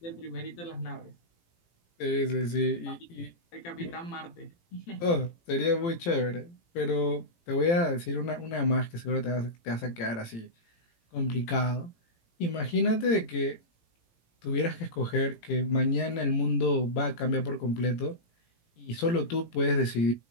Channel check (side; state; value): right; late; 18 ms